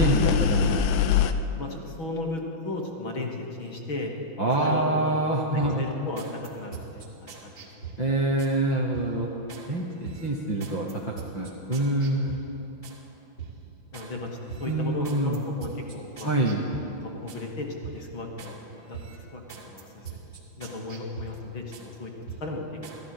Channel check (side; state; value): right; late; 5.5 ms